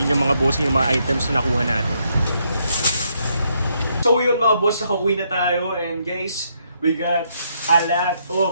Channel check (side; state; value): both; inverted; correlation -0.75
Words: mga boss yung mga items na nakuha natin. So yun mga boss, nakauwi na tayo. And guys, we got a lot